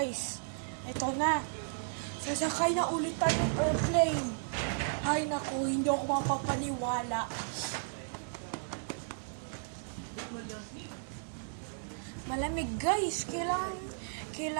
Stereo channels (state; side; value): silent; left; digital silence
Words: Ito na. Sasakay na ulit tayo ng airplane. Ay naku, hindi ako mapapaniwala. Malamig guys,